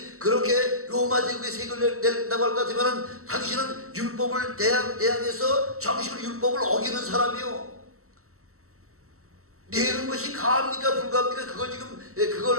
그렇게 로마 제국의 세금을 낸다고 할 것 같으면 당신은 율법을 대항해서 정식으로 율법을 어기는 사람이요. 내는 것이 가합니까 불가합니까? 그걸 지금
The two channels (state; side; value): late; left; 0.64 ms